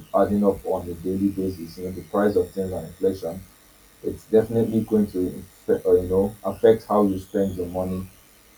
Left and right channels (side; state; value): both; identical; correlation 1.00